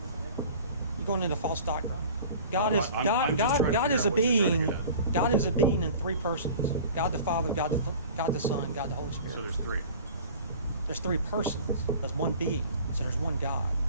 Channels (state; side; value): inverted; both; correlation -0.42